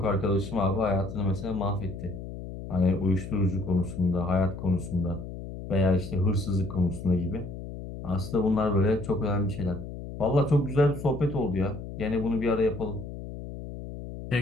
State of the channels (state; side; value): noise; left; hum, 10 dB below the sound